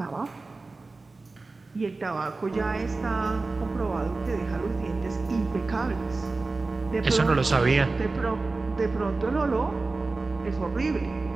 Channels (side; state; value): left; quieter; 3.6 dB